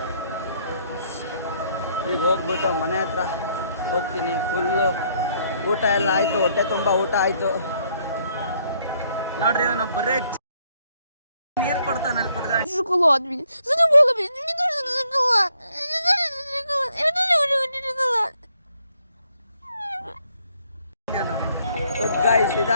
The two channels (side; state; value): both; inverted; correlation -0.69